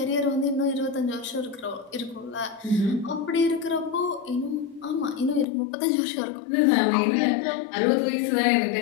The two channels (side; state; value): right; drops out; at 5.5 s